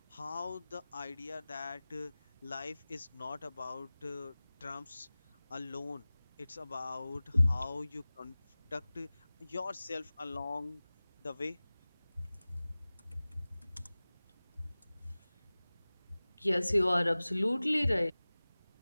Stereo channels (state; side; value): inverted; both; correlation -0.98